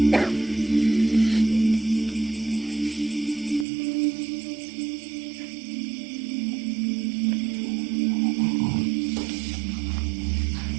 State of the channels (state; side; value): drops out; left; at 3.7 s